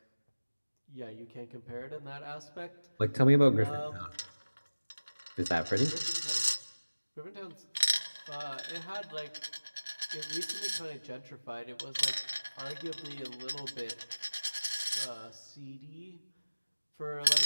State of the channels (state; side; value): inverted; both; correlation -1.00